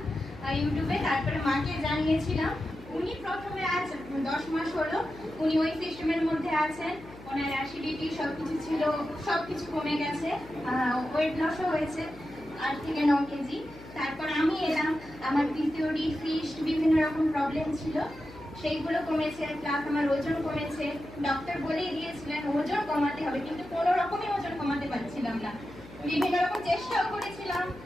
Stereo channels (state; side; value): noise; left; hum, 18 dB below the sound